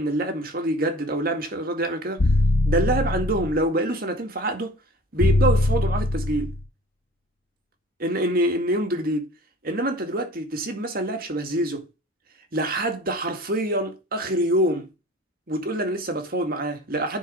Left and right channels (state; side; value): normal; both; correlation 0.44